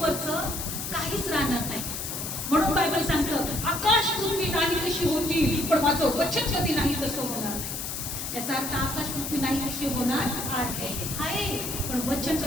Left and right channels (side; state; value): left; noise; hiss, 5 dB below the sound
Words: काहीच राहणार नाही. म्हणून बायबल सांगतं, आकाश पृथ्वी नाही कशी होती, पण माझं वचन कधी नाही तसं होणार नाही. याचा अर्थ आकाश पृथ्वी नाही कशी होणार आहे, पण वचन